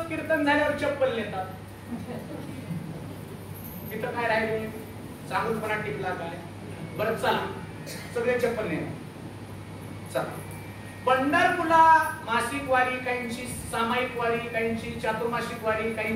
कीर्तन झाल्यावर चप्पल नेतात. तिथं काय राहिले? चांगुलपणा टिकला काय? बरं चला, सगळे चप्पल नेतात. चला, पंढरपूरला मासिक वारी, काहींची सामायिक वारी, काहींची चातुर्मासिक वारी,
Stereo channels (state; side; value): identical; both; correlation 1.00